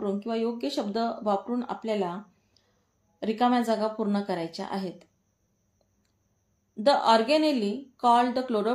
किंवा योग्य शब्द वापरून आपल्याला रिकाम्या जागा पूर्ण करायच्या आहेत। The organelle called the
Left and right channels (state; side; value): identical; both; correlation 1.00